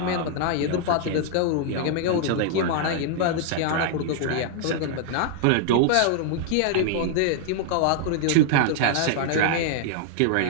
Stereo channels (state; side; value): different; both; correlation -0.01